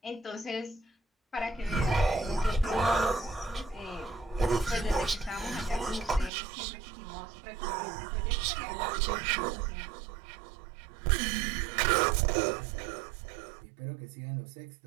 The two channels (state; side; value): drops out; left; at 6.3 s